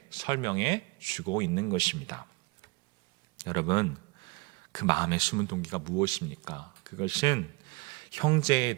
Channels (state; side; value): quieter; left; 26.7 dB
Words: 설명해 주고 있는 것입니다. 여러분, 그 마음의 숨은 동기가 무엇입니까? 그것은 형제에